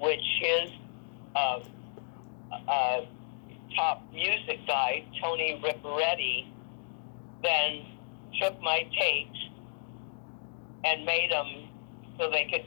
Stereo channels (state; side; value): silent; right; digital silence